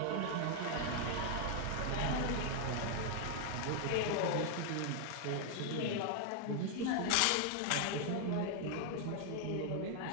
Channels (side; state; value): both; different; correlation 0.00